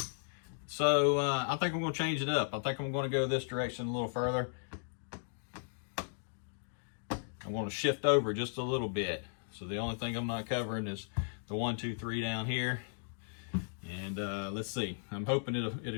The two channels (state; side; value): silent; right; digital silence